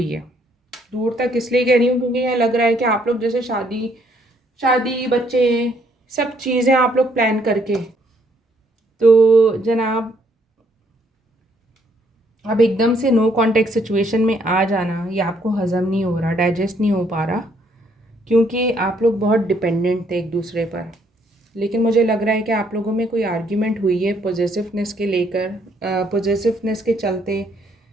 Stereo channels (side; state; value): both; normal; correlation 0.68